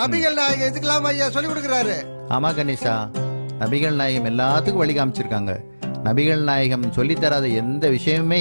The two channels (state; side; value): inverted; both; correlation -1.00